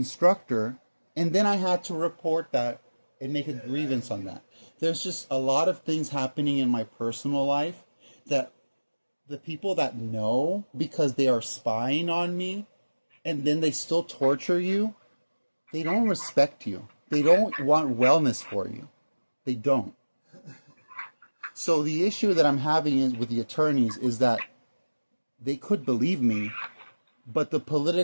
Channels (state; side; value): inverted; both; correlation -1.00